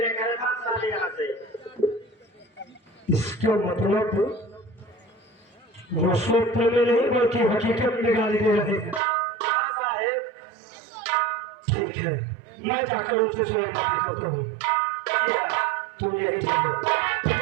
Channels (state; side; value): drops out; left; at 9.0 s